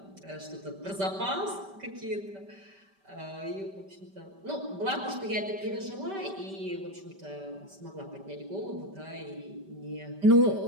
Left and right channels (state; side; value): late; left; 5.1 ms